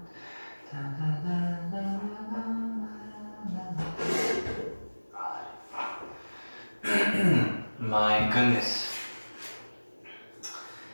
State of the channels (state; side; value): inverted; both; correlation -1.00